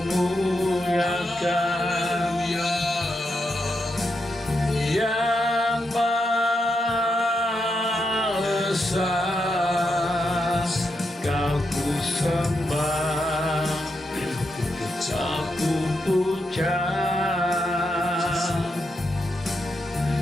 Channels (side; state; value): both; normal; correlation 0.83